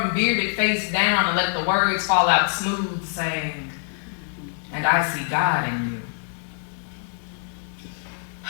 bearded face down and let the words fall out smooth, saying, "And I see God in you."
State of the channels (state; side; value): silent; right; 62 dB below the other